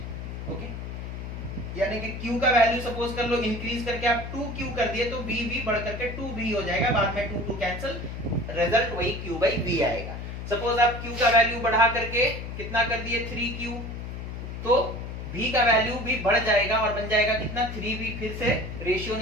ओके। यानी कि Q का वैल्यू सपोज कर लो इंक्रीज करके आप 2Q कर दिए तो V भी बढ़ करके 2V हो जाएगा, बाद में 2 कैंसिल, रिजल्ट वही Q by V आएगा। सपोज आप Q का वैल्यू बढ़ा करके कितना कर दिए, 3Q, तो V का वैल्यू भी बढ़ जाएगा और बन जाएगा कितना, 3V। फिर से रेशियो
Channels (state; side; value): noise; left; hum, 7 dB below the sound